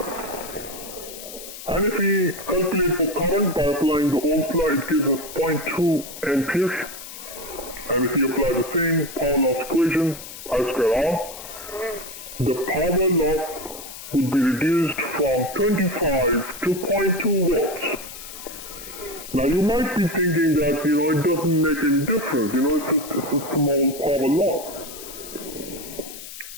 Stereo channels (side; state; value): left; noise; hiss, 13 dB below the sound